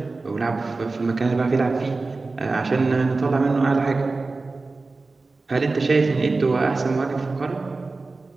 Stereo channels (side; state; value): left; quieter; 3.6 dB